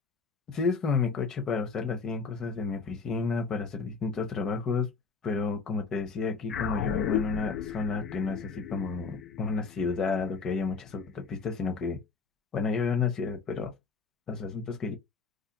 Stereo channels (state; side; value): quieter; right; 4.9 dB